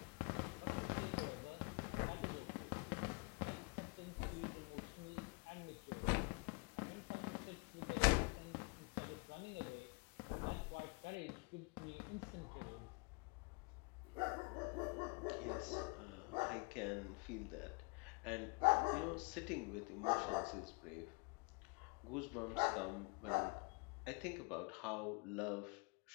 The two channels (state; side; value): quieter; right; 31.1 dB